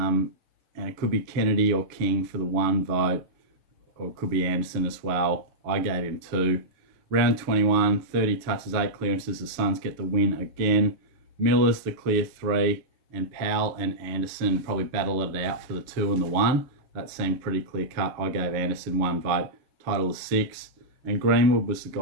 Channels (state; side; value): late; left; 7.0 ms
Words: it could be Kennedy or King for the 1 vote. Or it could be Anderson as well. I gave him 2. Round 21, 30 touches, 8 clearances. The Suns get the win again. Miller's the clear 3, and Powell and Anderson probably battle it out for the 2 and the 1. That seemed pretty clear cut. I gave Anderson 1 vote. Title is 6. And Greenwood was the